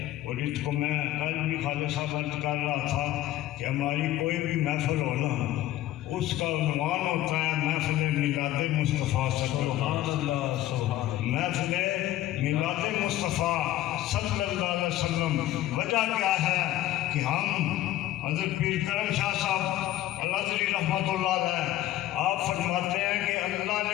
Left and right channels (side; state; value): right; quieter; 14.4 dB